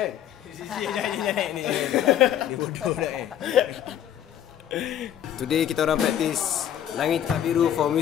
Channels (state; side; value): quieter; right; 10.5 dB